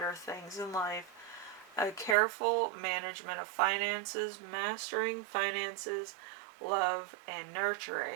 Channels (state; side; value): drops out; left; at 2.1 s